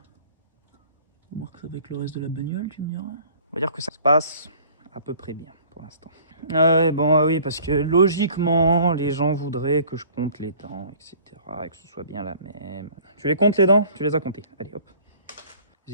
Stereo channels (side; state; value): both; inverted; correlation -0.50